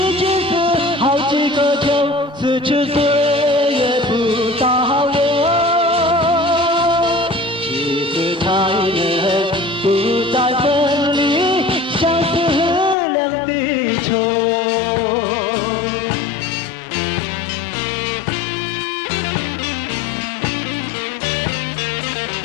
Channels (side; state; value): right; drops out; at 13.0 s